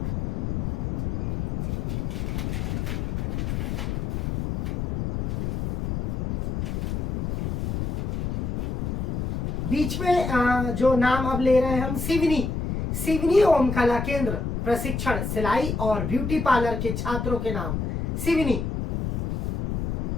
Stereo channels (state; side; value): noise; left; rumble, 2 dB below the sound